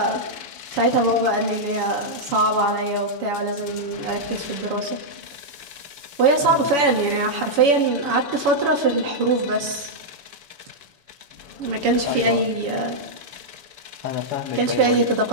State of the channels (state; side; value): late; left; 7.0 ms